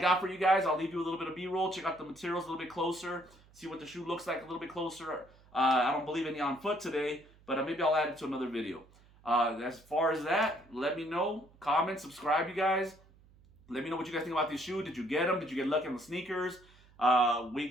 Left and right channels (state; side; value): noise; right; hum, 27 dB below the sound